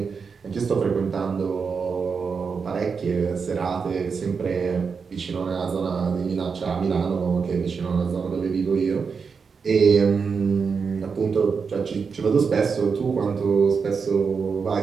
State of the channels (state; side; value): quieter; left; 5.5 dB